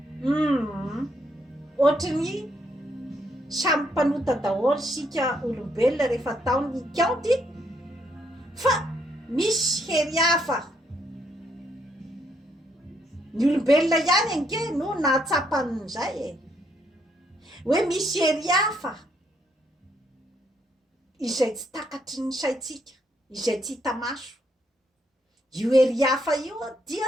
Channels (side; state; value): both; normal; correlation 0.73